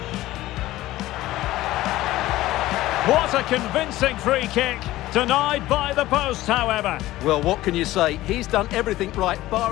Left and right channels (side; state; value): right; quieter; 16.3 dB